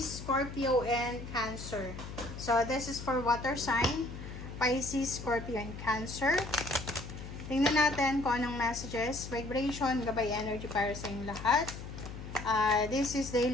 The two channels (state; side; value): noise; left; hum, 10 dB below the sound